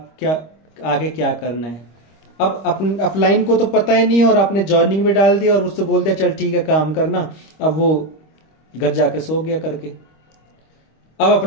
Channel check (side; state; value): right; late; 26 ms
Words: क्या आगे क्या करना है। अब अपलाइन को तो पता ही नहीं है और आपने जॉइनिंग में डाल दिया और उससे बोल दिया चल ठीक है काम करना, अब वो घर जाके सो गया करके। अब